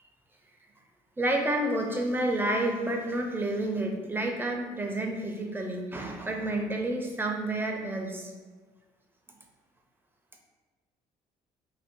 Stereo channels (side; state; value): both; normal; correlation 0.58